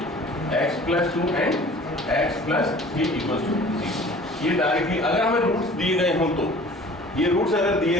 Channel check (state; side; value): normal; both; correlation 0.47